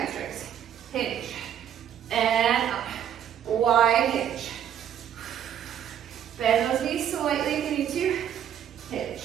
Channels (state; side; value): quieter; left; 9.7 dB